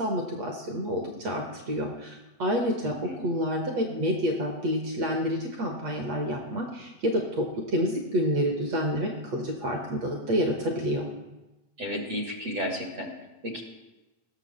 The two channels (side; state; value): left; late; 8.3 ms